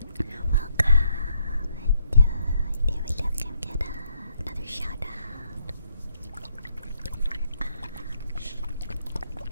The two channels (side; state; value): both; inverted; correlation -0.73